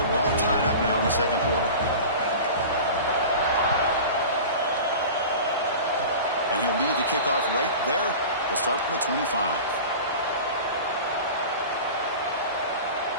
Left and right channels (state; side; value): inverted; both; correlation -0.35